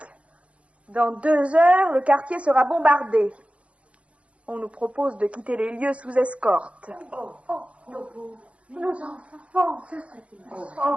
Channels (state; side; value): late; left; 0.062 ms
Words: Dans 2 heures, le quartier sera bombardé. On nous propose de quitter les lieux sous escorte. Nos enfants, ce serait une